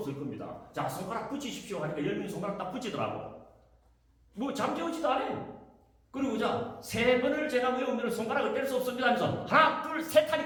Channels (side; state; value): both; identical; correlation 1.00